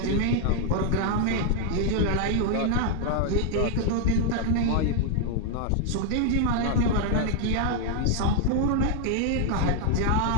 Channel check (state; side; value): different; both; correlation 0.00